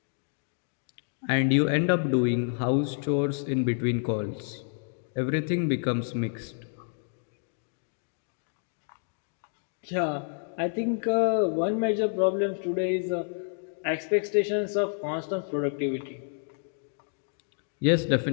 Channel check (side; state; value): right; silent; digital silence